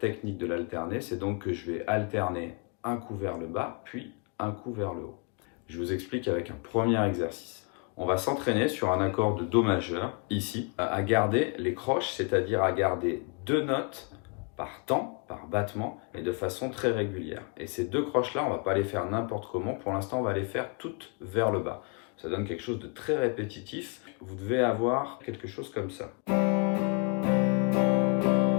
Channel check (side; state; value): right; quieter; 35.1 dB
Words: de l'alterner, c'est donc que je vais alterner un coup vers le bas puis un coup vers le haut. Je vous explique avec un premier exercice. On va s'entraîner sur un accord de Do majeur, ici, à garder les croches, c'est-à-dire à garder 2 notes par temps, par battement, et de façon très régulière. Et ces 2 croches-là, on va pas les faire n'importe comment. Pour l'instant, on va les faire toutes vers le bas. Ça donne quelque chose de très répétitif. Vous devez avoir quelque chose comme ça.